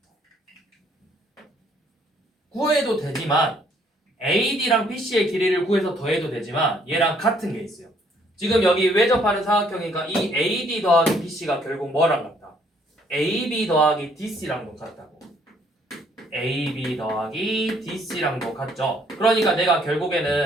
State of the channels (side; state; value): both; normal; correlation 0.65